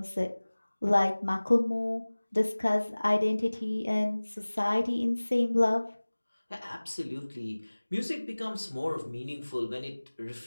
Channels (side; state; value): both; inverted; correlation -1.00